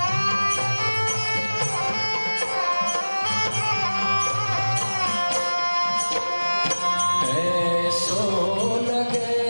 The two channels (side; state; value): both; inverted; correlation -1.00